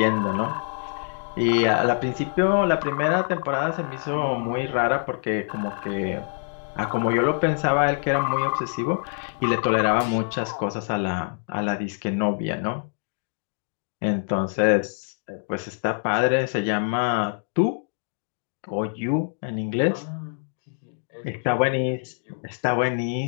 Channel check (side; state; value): right; silent; digital silence